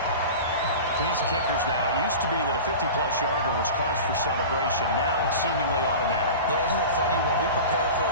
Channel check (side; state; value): both; inverted; correlation -0.33